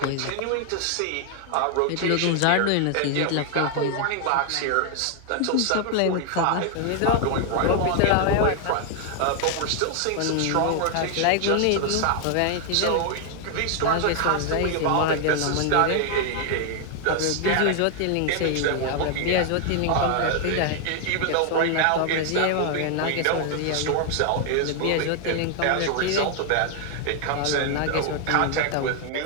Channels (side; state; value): both; different; correlation 0.00